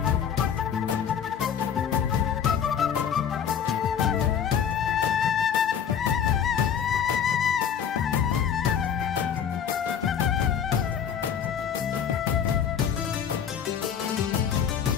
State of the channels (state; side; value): quieter; right; 8.0 dB